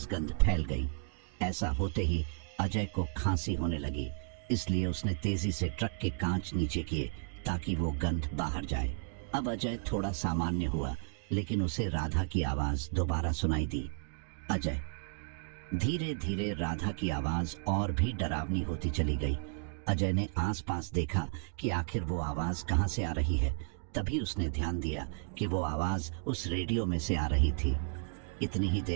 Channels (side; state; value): left; silent; 55 dB below the other